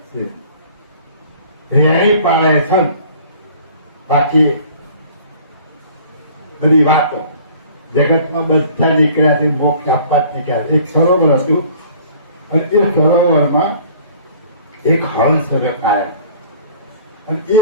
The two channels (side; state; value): both; inverted; correlation -0.51